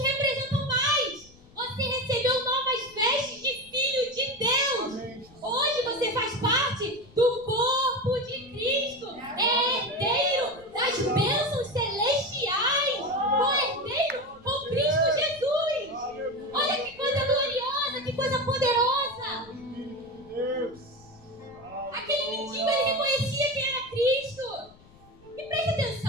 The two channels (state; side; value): noise; left; rumble, 26 dB below the sound